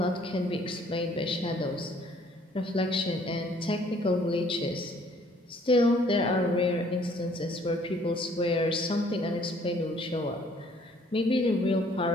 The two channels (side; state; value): both; normal; correlation 0.60